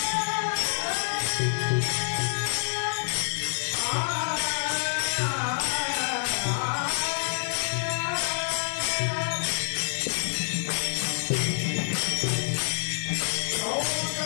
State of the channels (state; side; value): silent; right; digital silence